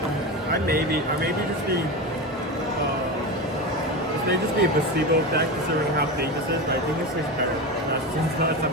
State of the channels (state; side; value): normal; both; correlation 0.21